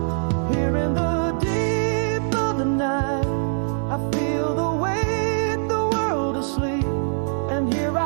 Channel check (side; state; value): left; silent; digital silence